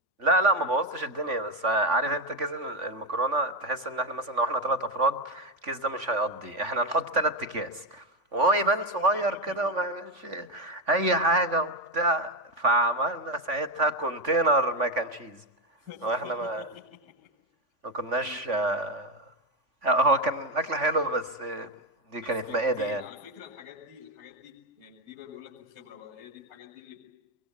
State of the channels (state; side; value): late; left; 3.5 ms